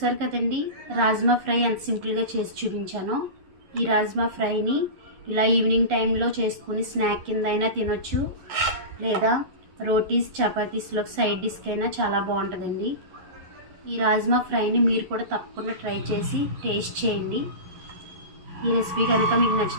కదండి, రాజ్మా ఫ్రై ఎంత సింపుల్గా చేసి చూపించానో. ఈ రాజ్మా ఫ్రైని ఇలా ఈవినింగ్ టైంలో చేసుకుని స్నాక్ కింద అయినా తినొచ్చు, లేదా రోటీస్ చపాతీస్లో సైడ్ డిష్కి అయినా చాలా బాగుంటుందండి. ఈ రాజ్మా ఫ్రైని మీరు కూడా తప్పకుండా ట్రై చేసి టేస్ట్ చేయండి. ఈ రెసిపీ కనుక మీకు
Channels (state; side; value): late; left; 11 ms